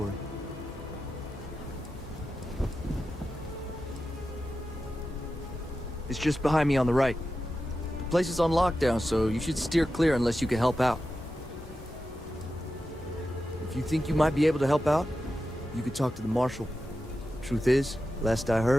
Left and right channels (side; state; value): both; normal; correlation 0.91